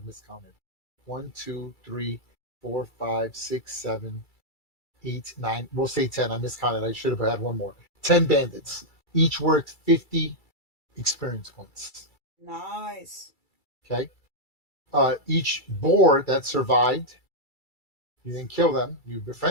miscounted. 1, 2, 3, 4, 5, 6, 7, 8, 9. We'll say 10. I miscounted. I should have had one more. 10 bandits. Each worth 50 experience points. Nice. Okay. Each boar that survived, you didn't kill them, you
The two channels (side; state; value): right; late; 2.3 ms